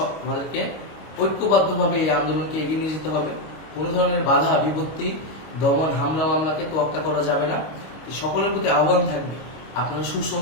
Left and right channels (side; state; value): right; late; 25 ms